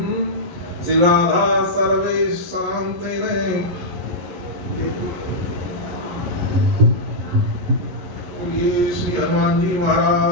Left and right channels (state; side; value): late; left; 11 ms